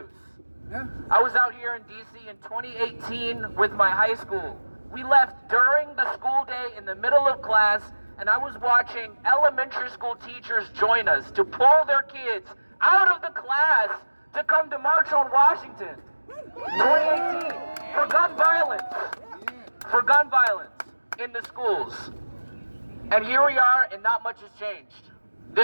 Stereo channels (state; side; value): inverted; both; correlation -1.00